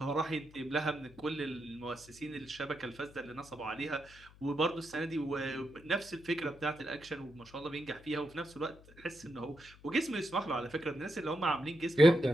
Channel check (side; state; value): left; noise; hum, 22 dB below the sound